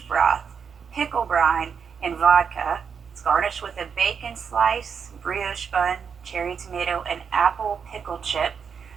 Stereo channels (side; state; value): left; quieter; 6.6 dB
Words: broth, pickle brine, and vodka. It's garnished with a bacon slice, brioche bun, cherry tomato, and apple pickle chip.